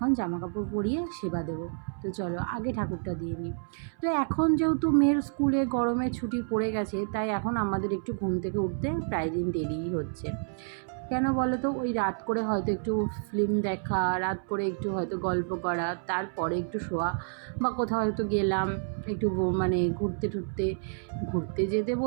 জামা কাপড় পরিয়ে সেবা দেবো। তো চলো আগে ঠাকুরটা দিয়ে নিই। তো এখন যেহেতু মেয়ের স্কুলে গরমের ছুটি পড়ে গেছে, তাই এখন আমাদের একটু ঘুম থেকে উঠতে প্রায় দিন দেরিই হচ্ছে। কেন বলো তো? ওই রাত করে হয়তো একটু ফিল্ম দেখা, রাত করে একটু হয়তো গল্প করা, তারপরে একটু শোয়া, বা কোথাও হয়তো গেলাম একটু মানে ঘুরতে টুরতে। ঘুরতে যেতে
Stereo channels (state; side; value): silent; left; 58 dB below the other